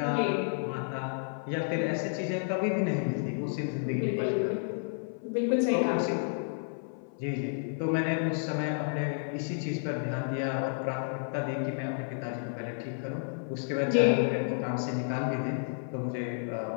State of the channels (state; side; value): silent; right; 57 dB below the other